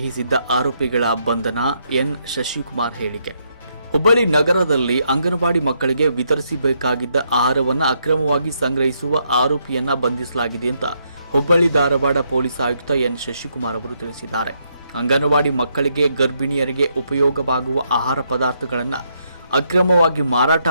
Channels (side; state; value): both; inverted; correlation -0.76